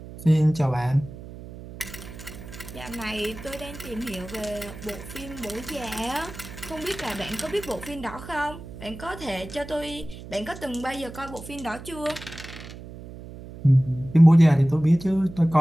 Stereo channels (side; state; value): right; noise; hum, 14 dB below the sound